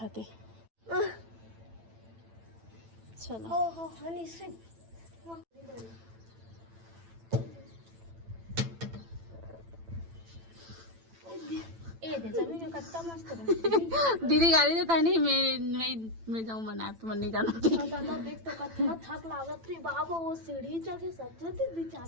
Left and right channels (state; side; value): late; left; 9.0 ms